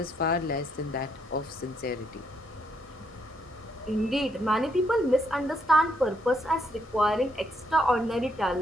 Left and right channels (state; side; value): normal; both; correlation 0.74